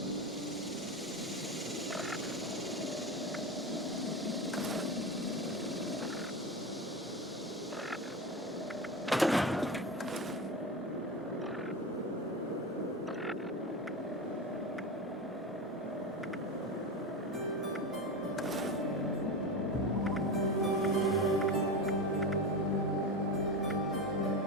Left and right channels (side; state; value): both; normal; correlation 0.21